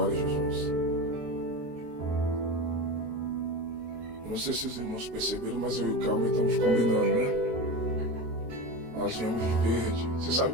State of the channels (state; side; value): late; left; 23 ms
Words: a Jesus. Não sei se os irmãos perceberam, mas eu e o Calma estamos combinando, né? Nós viemos de verde. Você sabe